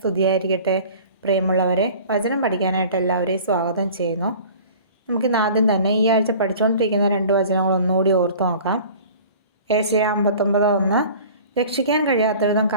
പ്രിയമുള്ളവരെ, വചനം പഠിക്കാനായിട്ട് എല്ലാവരെയും സ്വാഗതം ചെയ്യുന്നു. നമുക്കിന്ന് ആദ്യം തന്നെ ഈ ആഴ്ച പഠിച്ചുകൊണ്ടിരിക്കുന്ന 2 വചനങ്ങൾ ഒന്നുകൂടി ഓർത്തു നോക്കാം. ഏശയ്യാ 59:1 രക്ഷിക്കാൻ കഴിയാത്ത വിധം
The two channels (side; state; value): both; inverted; correlation -0.44